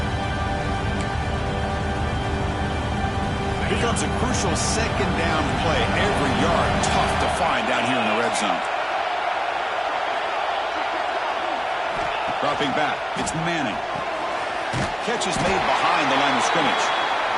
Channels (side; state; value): both; identical; correlation 1.00